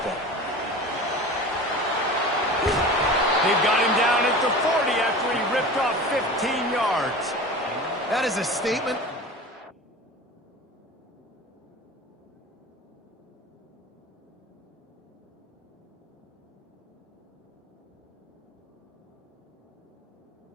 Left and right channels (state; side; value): normal; both; correlation 0.35